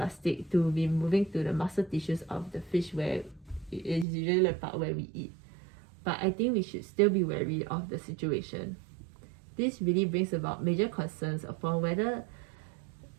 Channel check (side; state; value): left; drops out; at 4.0 s